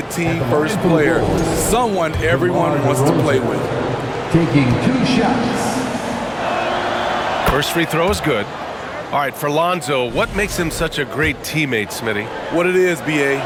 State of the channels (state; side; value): identical; both; correlation 1.00